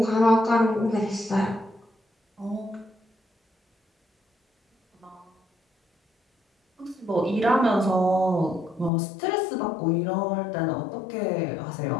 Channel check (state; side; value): drops out; right; at 8.9 s